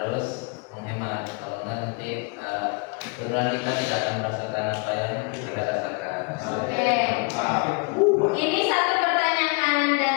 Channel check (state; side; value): quieter; right; 30.9 dB